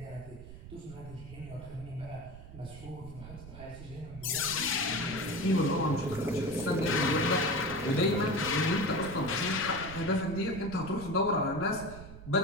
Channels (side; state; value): right; noise; rumble, 14 dB below the sound